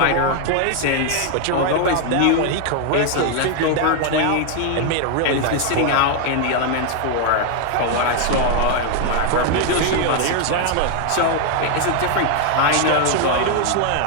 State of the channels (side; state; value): both; different; correlation 0.01